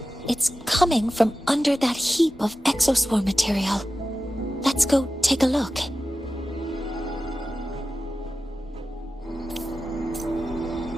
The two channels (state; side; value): normal; both; correlation 0.93